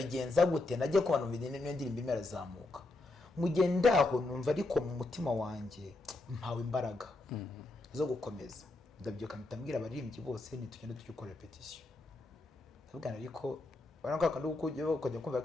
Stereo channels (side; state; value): right; quieter; 3.1 dB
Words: gute, najye kubana mu niyo ndirimbe imerazamuka, mugendaho numva ariko mu mutima wanjye mpawe imbaraga zo gukomeza. Ndabyuka mpitambwira abaririmbyi bose nitugenda tukikora repetition, ndabwira ariko baranga kandi ukujya kumva